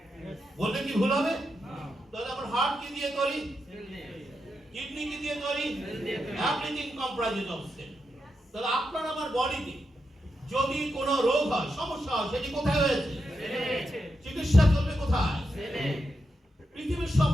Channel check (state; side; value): normal; both; correlation 0.86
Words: বললে কি ভুল হবে? তাহলে আমার হার্ট কি দিয়ে তৈরি? কিডনি কি দিয়ে তৈরি? Everything comprises of cell. তাহলে আপনার আমার বডিতে যদি কোনো রোগ হয়, সমস্যা হয়, সেটি কোথায় হয়েছে? চিকিৎসা চলবে কোথায়? পৃথিবীর সব